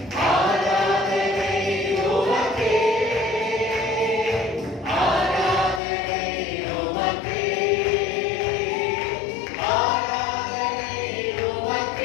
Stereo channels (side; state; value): right; drops out; at 5.8 s